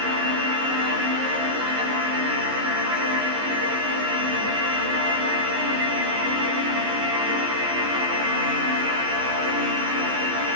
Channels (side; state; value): left; late; 15 ms